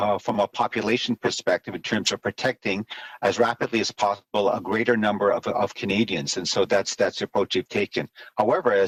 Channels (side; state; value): both; identical; correlation 1.00